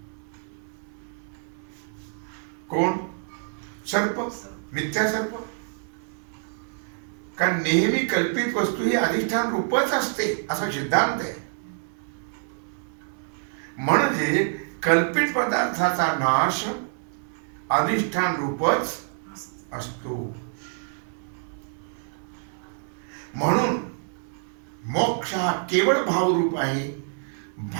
कोण? सर्प, मिथ्या सर्प. कारण नेहमी कल्पित वस्तू ही अधिष्ठान रूपच असते असा सिद्धांत आहे. म्हणजे कल्पित पदार्थाचा नाश अधिष्ठान रूपच असतो. म्हणून मोक्ष हा केवळ भावरूप आहे,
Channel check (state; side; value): silent; left; 60 dB below the other